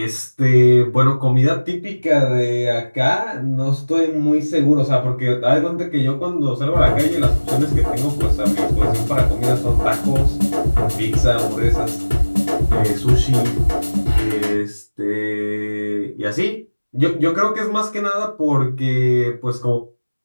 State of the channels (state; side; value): inverted; both; correlation -1.00